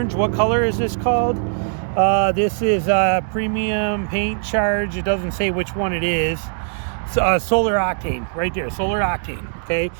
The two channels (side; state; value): left; silent; digital silence